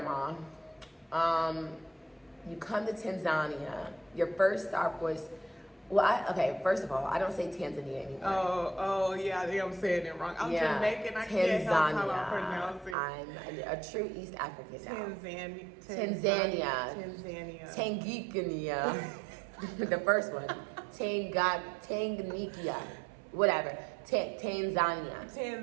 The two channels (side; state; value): left; drops out; at 13.0 s